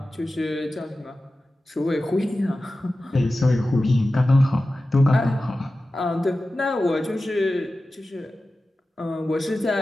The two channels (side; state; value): both; normal; correlation 0.94